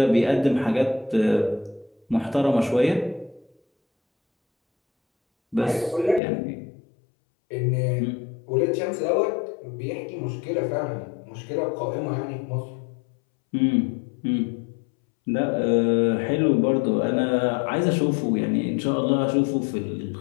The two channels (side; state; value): right; drops out; at 6.2 s